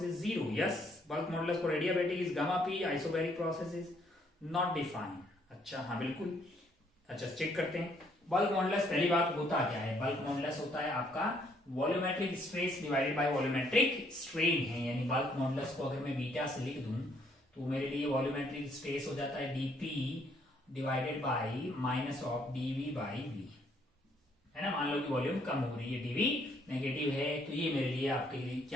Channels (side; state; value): both; normal; correlation 0.68